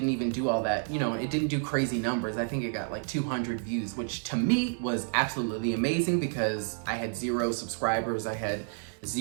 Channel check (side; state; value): left; silent; 56 dB below the other